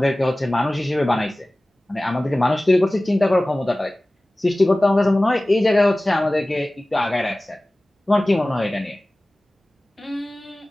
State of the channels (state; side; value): normal; both; correlation 0.98